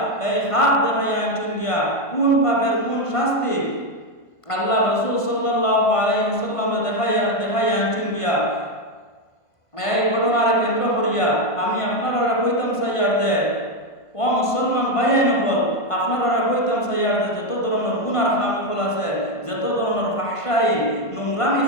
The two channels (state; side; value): late; right; 1.5 ms